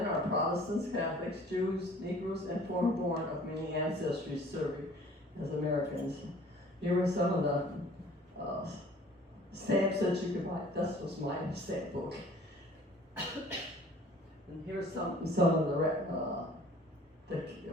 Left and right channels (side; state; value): both; normal; correlation 0.51